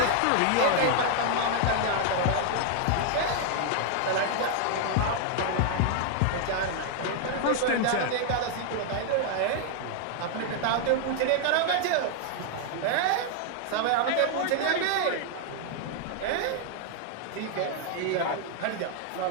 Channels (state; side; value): different; both; correlation 0.00